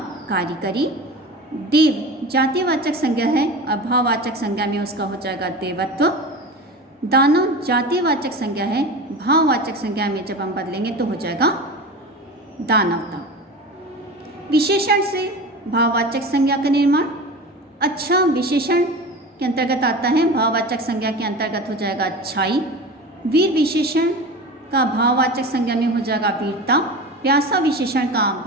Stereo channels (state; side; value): normal; both; correlation 0.31